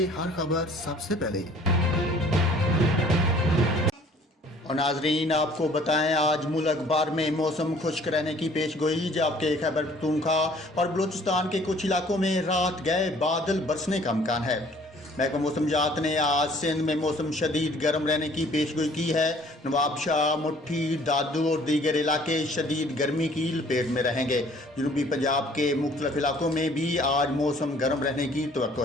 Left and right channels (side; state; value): both; normal; correlation 0.55